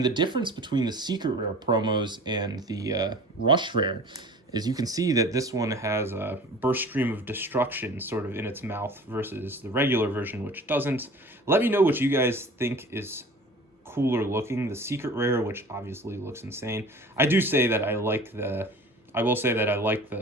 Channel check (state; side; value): normal; both; correlation 0.42